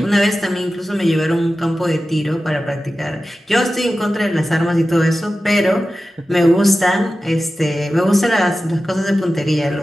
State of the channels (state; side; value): normal; both; correlation 0.94